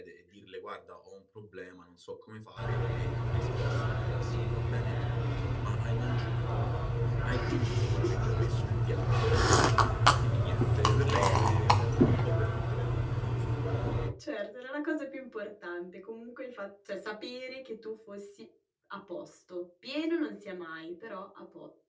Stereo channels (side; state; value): both; identical; correlation 1.00